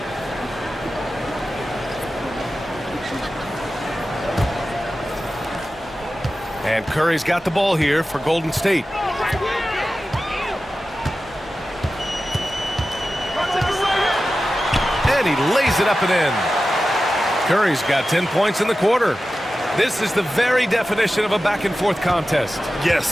And Curry's got the ball here for Golden State. And he lays it up and in. Curry's got 10 points in the quarter. This is the very definition of a back-and-forth contest.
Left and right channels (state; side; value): normal; both; correlation 0.94